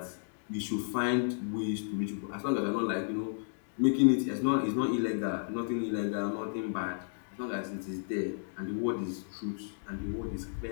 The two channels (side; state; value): right; silent; digital silence